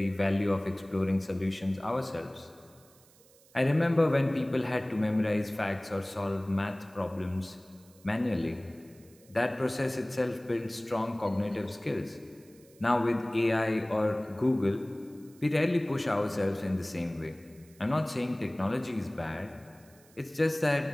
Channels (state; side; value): noise; right; hiss, 27 dB below the sound